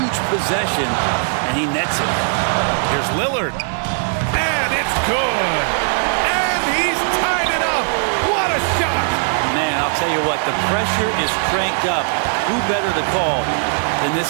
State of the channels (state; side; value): silent; left; digital silence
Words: possession, and he nets it. Here's Lillard. And it's good. And he's tied it up. What a shot. Man, I'll tell you what, the pressure is cranked up. Who better to call than